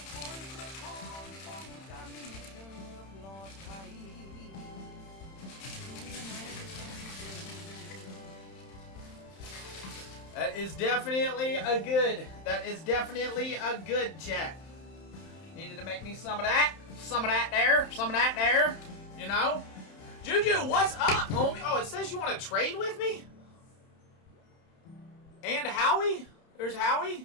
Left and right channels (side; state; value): right; late; 31 ms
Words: That is definitely a good chat. Needed to make me some of that there, you know? Juju, what's up, homie? Oh, it says you want to trade with me? And Howie? There's Howie?